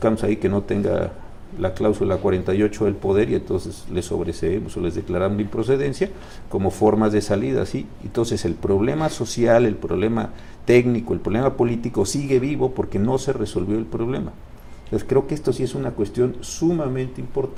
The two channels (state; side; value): identical; both; correlation 1.00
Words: ahí que no tenga la cláusula 48 del poder, y entonces les sobreseemos o les declaramos la improcedencia como formas de salida, ¿sí? Entonces el problema social, el problema técnico, el problema político sigue vivo porque no se resolvió el problema. Entonces creo que esto sí es una cuestión sumamente